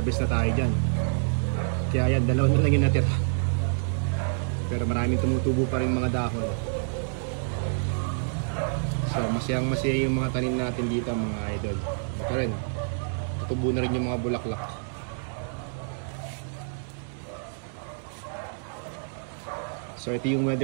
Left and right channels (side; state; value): left; silent; digital silence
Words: na tayo dyan. Kaya yan, dalawa na lang yung natira. Pero maraming tumutubo pa rin mga dahon. So masayang masaya yung mga tanim natin dito mga idol. Ito rin, tutubo na rin yung mga bulaklak. So ito yung